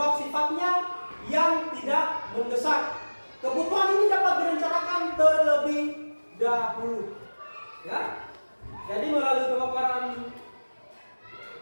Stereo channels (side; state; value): both; inverted; correlation -1.00